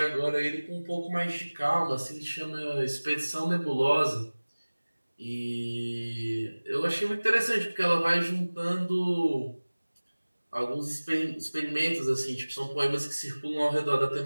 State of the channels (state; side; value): inverted; both; correlation -1.00